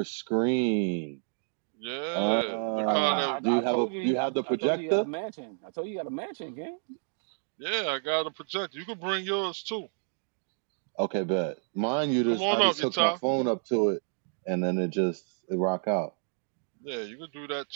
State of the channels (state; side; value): silent; left; digital silence